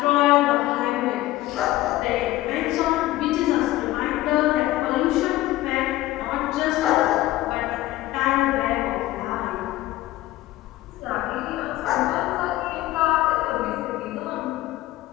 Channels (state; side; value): quieter; right; 16.4 dB